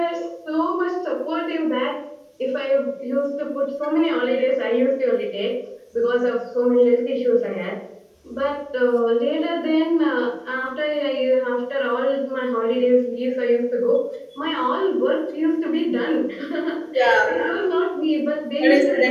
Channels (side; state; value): both; identical; correlation 1.00